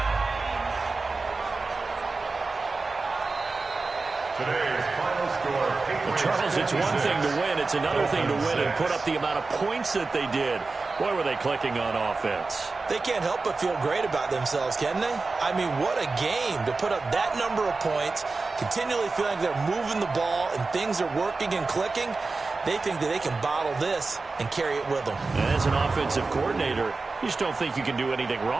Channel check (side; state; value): left; quieter; 3.8 dB